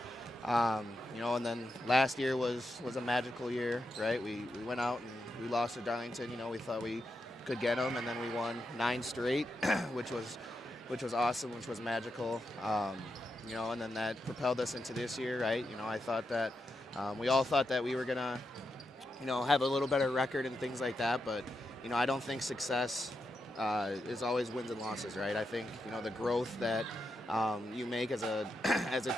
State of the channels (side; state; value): both; normal; correlation 0.86